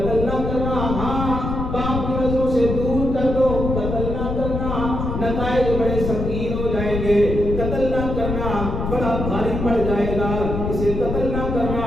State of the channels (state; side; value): noise; left; rumble, 3 dB below the sound